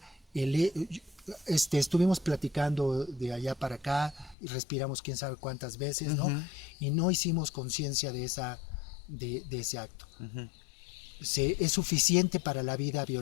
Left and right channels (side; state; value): right; drops out; at 4.4 s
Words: estuvimos platicando de allá para acá y respiramos quién sabe cuántas veces, ¿no? Y no hicimos conciencia de ese acto. Es suficiente para la vida